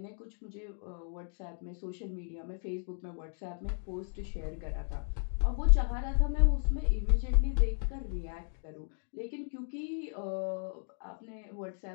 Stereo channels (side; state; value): right; silent; 55 dB below the other